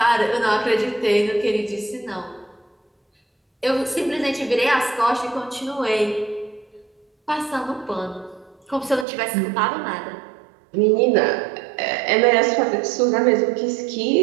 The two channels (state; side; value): drops out; left; at 9.1 s